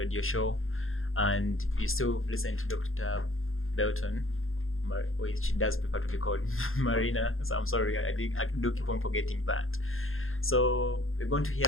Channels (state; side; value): late; right; 0.60 ms